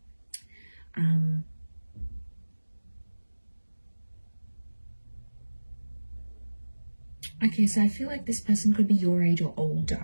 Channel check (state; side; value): inverted; both; correlation -1.00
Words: Okay, so I feel like this person could be your age or